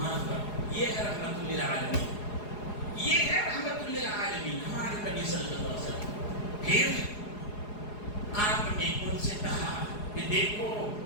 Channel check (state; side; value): late; right; 4.8 ms